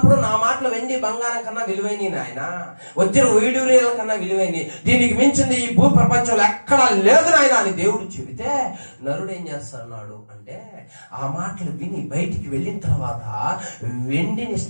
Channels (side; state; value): both; inverted; correlation -1.00